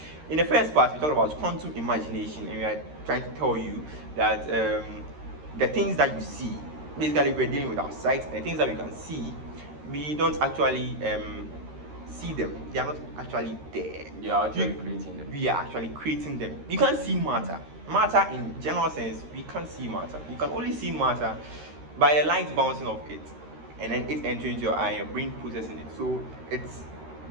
in the first part we talked about quantum imagination, and we are trying to tell you that the things that you see, basically we're dealing with our sight, and the things that we can see, we don't actually see them. They are not actually there. We are actually creating them. We are actually creating them. You can't see matter. Matter in general sense, we can't see matter. You can only see matter by the light bouncing off it, and then it entering into your eye, your brain processing it. So it's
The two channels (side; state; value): left; late; 13 ms